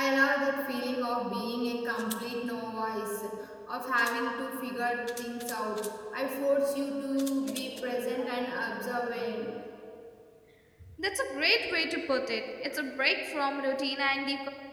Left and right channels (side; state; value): both; identical; correlation 1.00